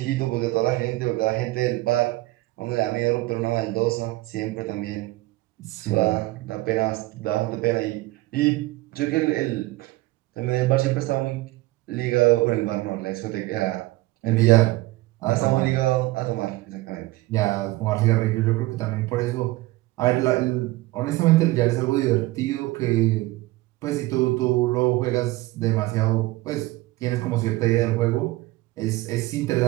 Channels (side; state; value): left; quieter; 19.2 dB